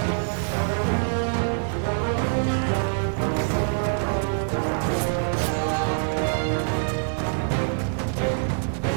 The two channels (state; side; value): silent; left; digital silence